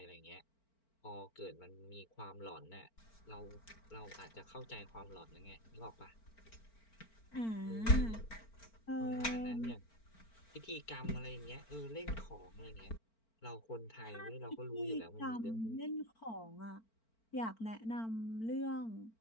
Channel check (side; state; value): right; late; 4.4 ms